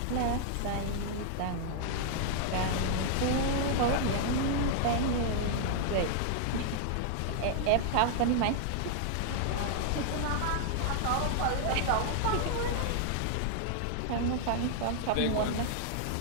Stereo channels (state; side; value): different; both; correlation -0.01